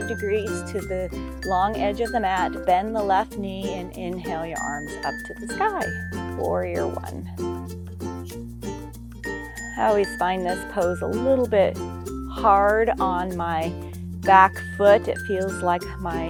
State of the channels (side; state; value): both; identical; correlation 1.00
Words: degrees to the long edge of the mat. Bend the left knee and inhale your arms up to the sky. Warrior one. I always find this pose a little bit hard on my back foot. It feels like